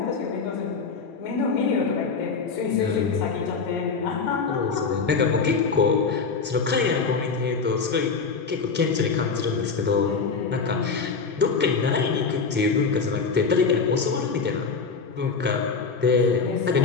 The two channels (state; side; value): quieter; right; 5.0 dB